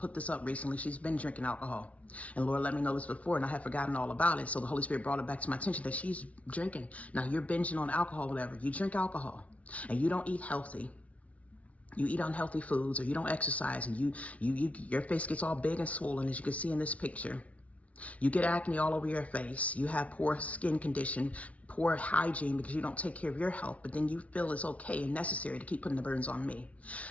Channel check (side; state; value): right; late; 0.066 ms